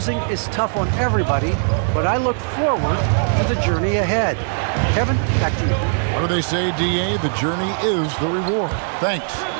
is tough on everybody, but I look forward to the journey ahead. Kevin, back to you. What do they say, D.A.? The journey is the reward. Thanks.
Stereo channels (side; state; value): left; silent; 66 dB below the other